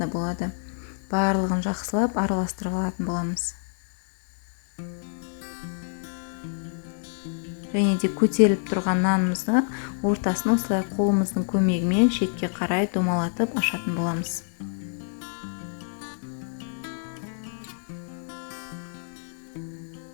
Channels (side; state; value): right; silent; digital silence